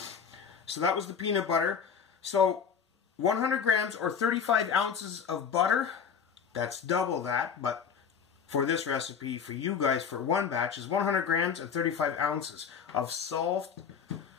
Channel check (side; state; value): right; quieter; 6.9 dB